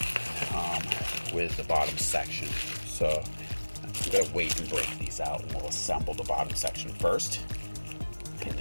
the bottom section. So I'm going to wait and break these out, and we'll assemble the bottom section first, and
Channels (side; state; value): both; inverted; correlation -1.00